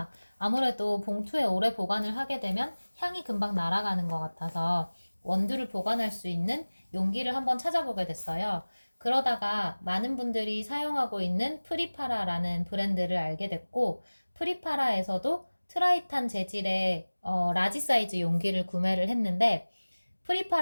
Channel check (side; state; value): both; inverted; correlation -1.00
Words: 아무래도 봉투에 오래 보관을 하게 되면 향이 금방 날아가는 것 같아서 원두를 보관할 수 있는 용기를 한번 찾아보게 됐어요. 그러다가 많은 분들이 사용하고 있는 프리파라라는 브랜드를 알게 됐고, 프리파라에서도 트라이탄 재질의 라지 사이즈 용기를 구매를 했는데,